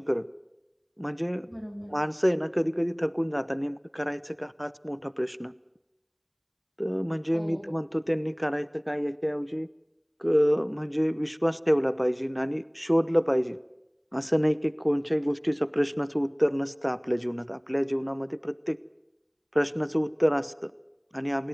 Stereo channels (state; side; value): identical; both; correlation 1.00